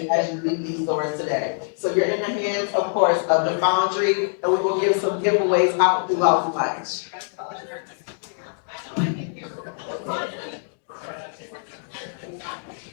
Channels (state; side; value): silent; right; digital silence